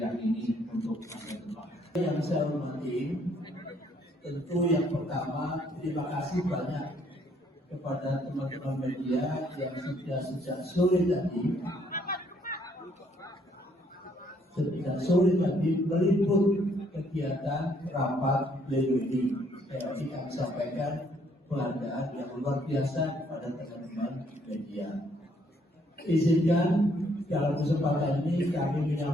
ini untuk masa depan. Yang saya hormati, tentu yang pertama terima kasih banyak kepada teman-teman media yang sudah sejak sore tadi meliput kegiatan rapat pleno ini. Saya ingin sampaikan penghargaan yang luar biasa kepada teman-teman media. Izinkan dalam kesempatan ini kami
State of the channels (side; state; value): both; normal; correlation 0.67